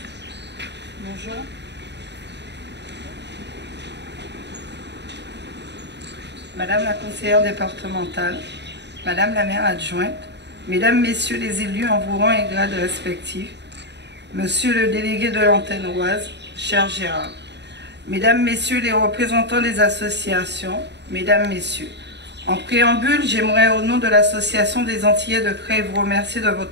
Bonjour. Madame la conseillère départementale, Madame la maire adjointe, Mesdames, Messieurs les élus en vos rangs et grades respectifs, Monsieur le délégué de l'antenne Oise, cher Gérard, Mesdames, Messieurs les représentants des associations, Mesdames, Messieurs, en préambule, j'aimerais au nom de l'Association des Antillais de Creil vous remercier de votre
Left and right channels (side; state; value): left; late; 0.50 ms